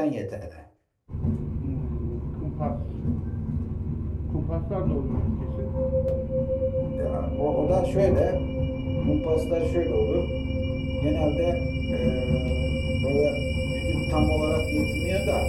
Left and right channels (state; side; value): identical; both; correlation 1.00